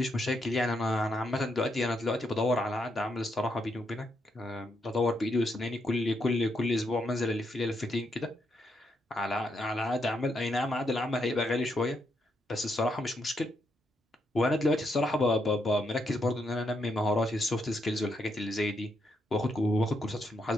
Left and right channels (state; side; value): normal; both; correlation 0.79